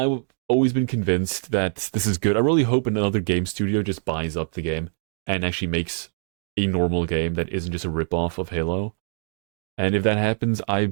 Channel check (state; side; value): silent; left; 61 dB below the other